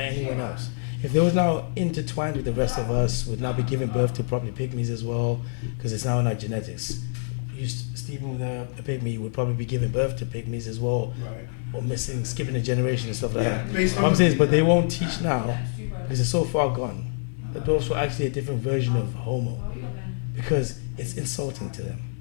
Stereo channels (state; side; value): silent; right; 61 dB below the other